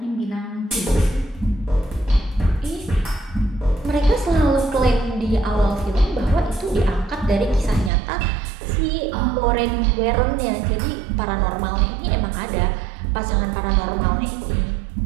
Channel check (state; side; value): drops out; left; at 7.9 s